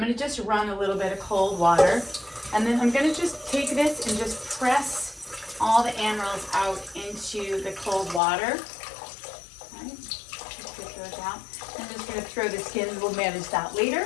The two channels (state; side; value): drops out; right; at 8.2 s